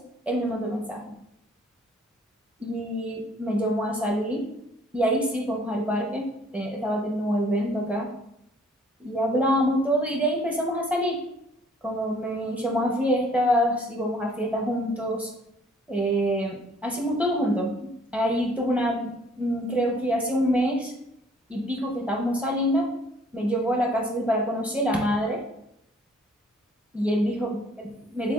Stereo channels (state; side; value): normal; both; correlation 0.59